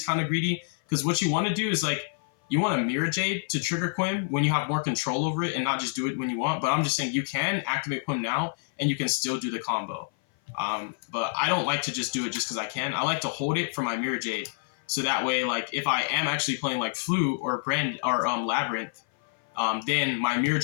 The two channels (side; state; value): right; silent; 57 dB below the other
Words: kind of greedy because what you want to do is like you want a Mirror Jade to trigger Quim when you have more control over it and not just do it when you want. But I'm just saying you can activate Quim now and you can still do the combo. But I don't like to just do it just because I can. I like to hold it for my Mirror Jade. So that way, like, if I am actually playing like Flute or Labyrinth, then my Mirror